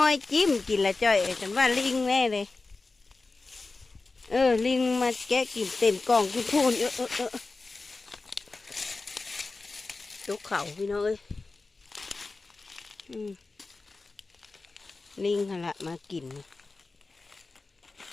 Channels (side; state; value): right; quieter; 3.7 dB